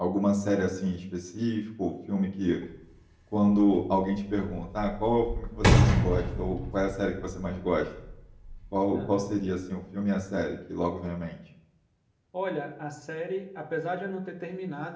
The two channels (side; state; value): both; identical; correlation 1.00